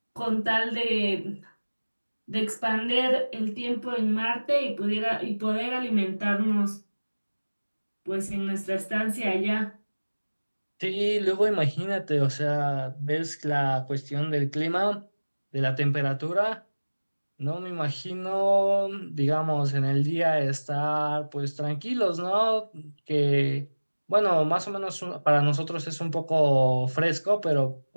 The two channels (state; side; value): inverted; both; correlation -1.00